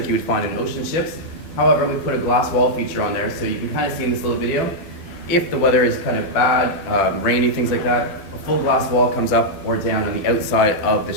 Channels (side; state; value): right; late; 12 ms